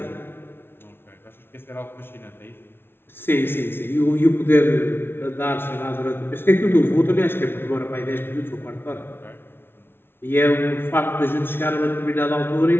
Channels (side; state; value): right; late; 0.11 ms